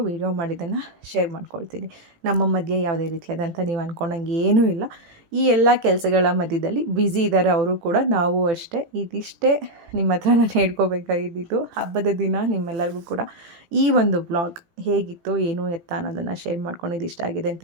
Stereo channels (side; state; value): left; late; 18 ms